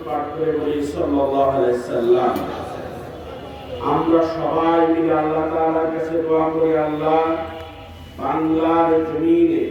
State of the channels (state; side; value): identical; both; correlation 1.00